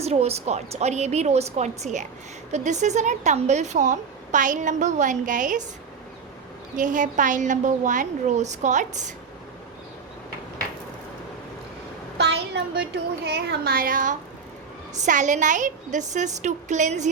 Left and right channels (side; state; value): left; quieter; 5.7 dB